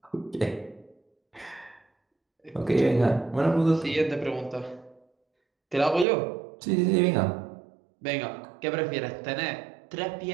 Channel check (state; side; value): drops out; left; at 6.1 s